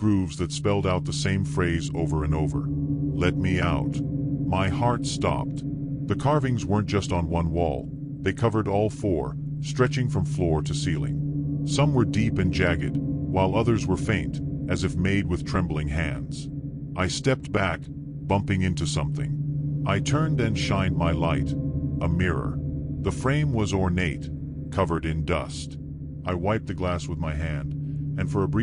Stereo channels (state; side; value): identical; both; correlation 1.00